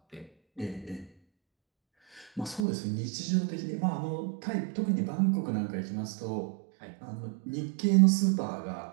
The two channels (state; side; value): drops out; left; at 2.7 s